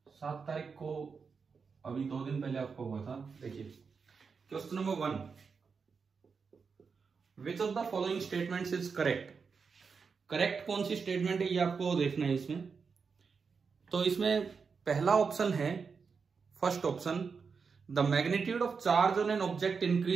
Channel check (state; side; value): quieter; left; 5.4 dB